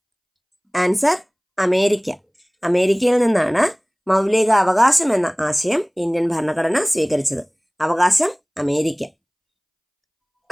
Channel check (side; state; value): both; identical; correlation 1.00